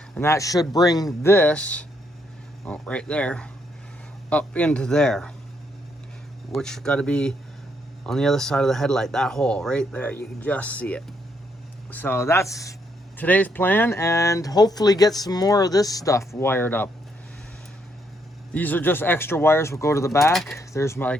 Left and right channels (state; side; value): normal; both; correlation 0.74